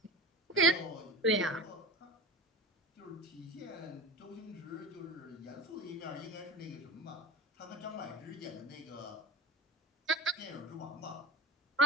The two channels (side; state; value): both; normal; correlation 0.30